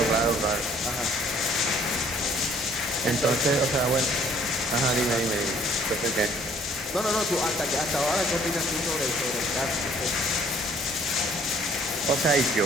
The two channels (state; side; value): normal; both; correlation 0.59